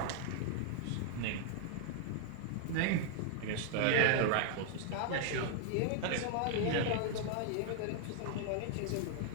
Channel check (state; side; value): different; both; correlation 0.00